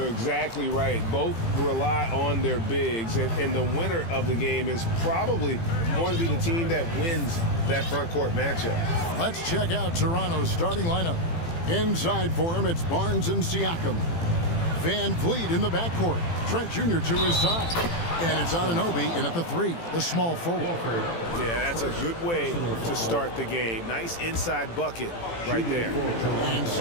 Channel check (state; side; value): late; right; 18 ms